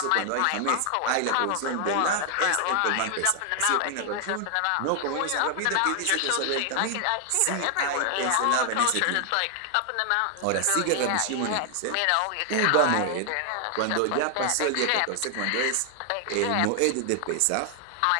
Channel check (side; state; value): both; different; correlation 0.00